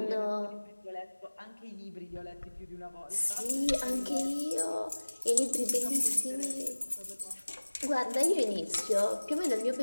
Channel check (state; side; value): inverted; both; correlation -1.00